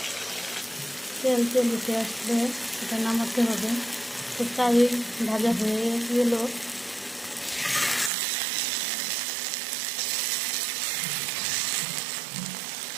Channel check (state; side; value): drops out; left; at 8.1 s